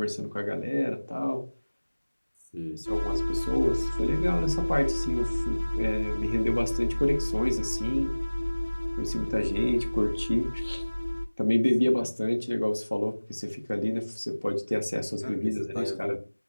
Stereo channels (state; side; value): inverted; both; correlation -1.00